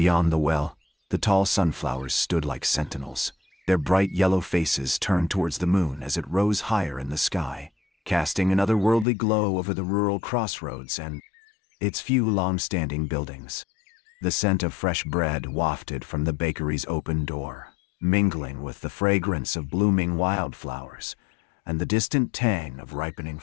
the well, the tall sunflowers stood like sentinels, their bright yellow faces turned towards the moon as it rose higher in the sky, casting an otherworldly glow over the rural crossroads and its few long-standing buildings. The scent of fresh bread wafted from the bakery's open door, mingling with the fragrance of blooming wildflowers and the distant tang of ripening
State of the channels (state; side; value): drops out; right; at 9.1 s